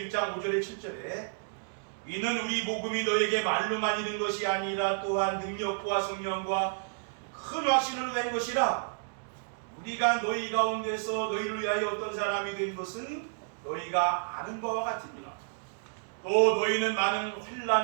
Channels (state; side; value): silent; left; digital silence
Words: 5절에 7절에 이는 우리 복음이 너에게 말로만 있는 것이 아니라 또한 능력과 성령과 큰 확신으로 된 것이라. 우리가 너희 가운데서 너희를 위하여 어떤 사람이 된 것은 너희가 아는 바와 같으니라. 또 너희는 많은